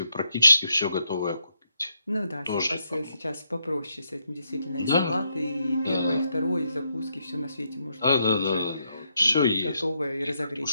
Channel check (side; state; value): both; inverted; correlation -0.79